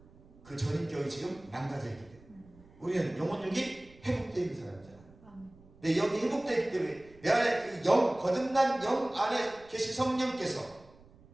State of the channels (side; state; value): right; noise; rumble, 25 dB below the sound